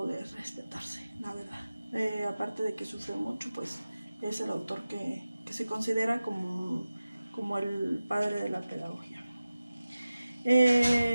de respetarse, la verdad. Aparte de que sufre mucho, pues, es el autor que se considera como el padre de la pedagogía.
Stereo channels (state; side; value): inverted; both; correlation -0.96